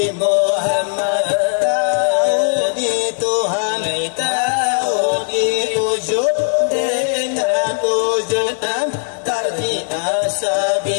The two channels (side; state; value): right; silent; digital silence